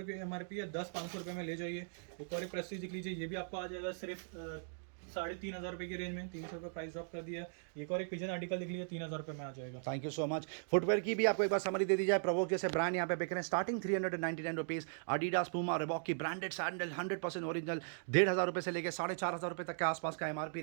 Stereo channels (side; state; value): left; silent; digital silence